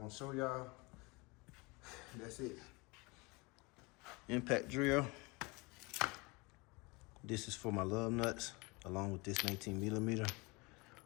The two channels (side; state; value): right; quieter; 26.4 dB